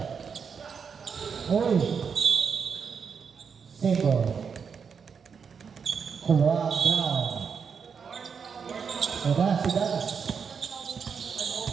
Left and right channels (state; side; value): quieter; left; 6.3 dB